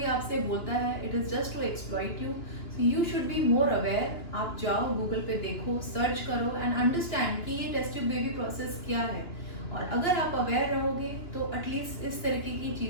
आपसे बोलता है it is just to exploit you, you should be more aware. आप जाओ गूगल पे देखो, सर्च करो एंड अंडरस्टैंड कि ये टेस्ट ट्यूब बेबी प्रोसेस क्या है। और अगर आप अवेयर रहोगे तो एटलीस्ट इस तरीके की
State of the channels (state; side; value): late; right; 2.9 ms